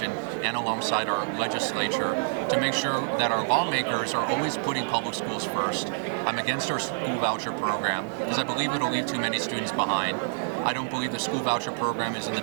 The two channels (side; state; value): left; silent; digital silence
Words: and alongside our legislature, to make sure that our lawmakers are always putting public schools first. I'm against our school voucher program because I believe it'll leave too many students behind. I don't believe the school voucher program is in the